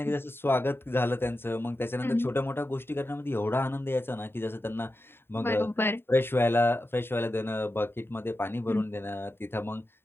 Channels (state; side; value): late; right; 0.11 ms